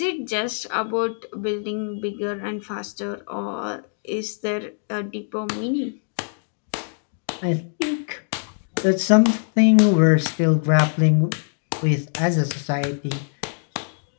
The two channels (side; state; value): right; silent; digital silence